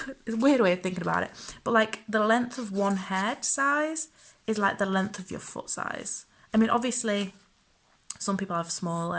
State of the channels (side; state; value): both; identical; correlation 1.00